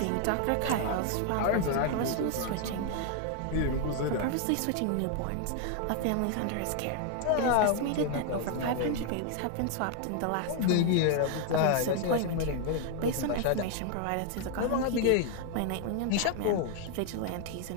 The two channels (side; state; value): both; different; correlation 0.00